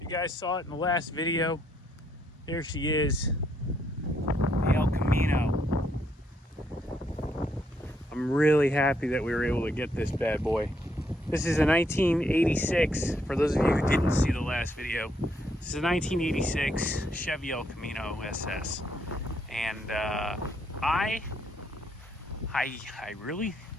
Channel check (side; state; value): both; normal; correlation 0.73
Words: you guys saw it in the last video. There she is, the El Camino. I'm really happy that we were able to get this bad boy. This is a 1986, for those of you who didn't see the last video. This is a 1986 Chevy El Camino SS. And I really,